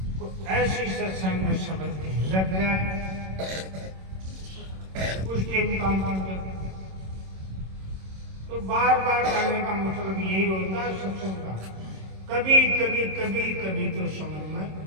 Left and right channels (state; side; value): late; left; 26 ms